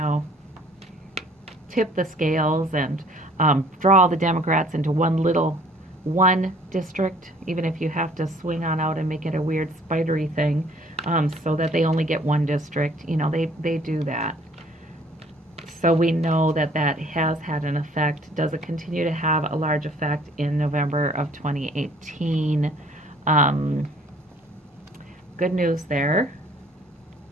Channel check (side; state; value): both; normal; correlation 0.56